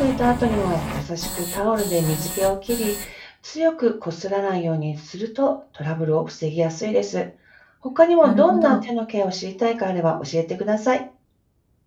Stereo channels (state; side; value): identical; both; correlation 1.00